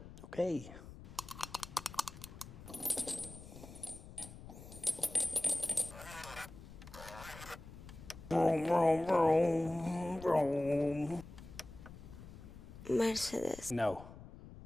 Okay. Vroom, vroom, vroom, vroom. Mercedes. No.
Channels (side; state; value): left; noise; rumble, 15 dB below the sound